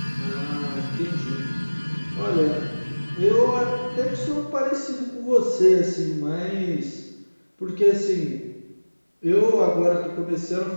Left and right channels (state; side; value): inverted; both; correlation -1.00